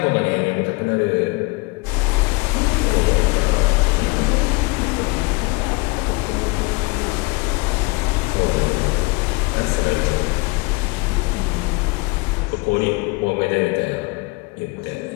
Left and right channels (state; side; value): quieter; right; 26.5 dB